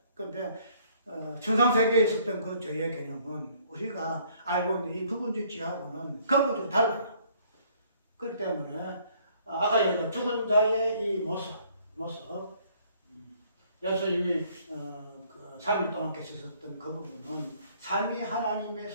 그런데 천상세계에 있었던 그 죄의 개념은 우리가 알고 있는 이 부분적 죄하고는 근본적으로 달라요. 그렇기 때문에 아까 얘기한 죽은 자의 이 모습 예수님이 그 3일 동안 계셨던 그 부분은 삼위 하나님의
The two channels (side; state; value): both; inverted; correlation -0.62